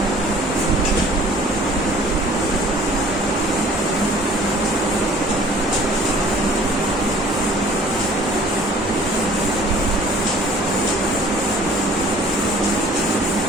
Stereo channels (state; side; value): normal; both; correlation 0.51